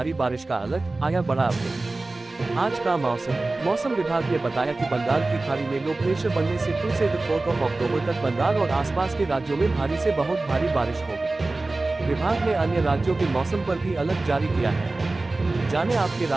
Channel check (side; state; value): left; quieter; 3.2 dB